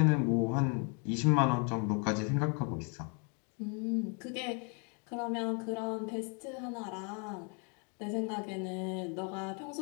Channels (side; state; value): right; quieter; 37.2 dB